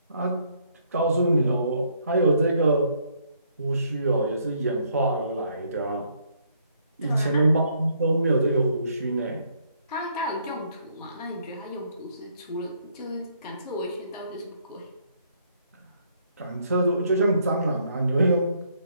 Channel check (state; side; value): inverted; both; correlation -0.69